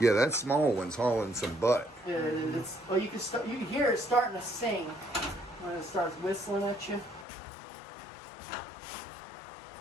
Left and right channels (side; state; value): right; drops out; at 7.2 s